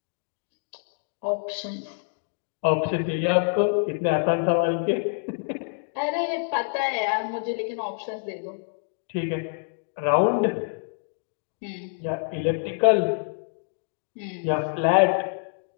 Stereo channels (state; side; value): silent; right; digital silence